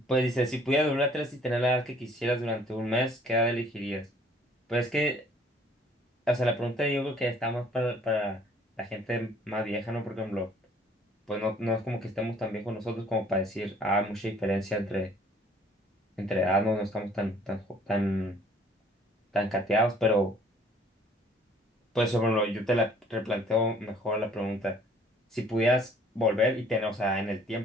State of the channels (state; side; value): normal; both; correlation 0.58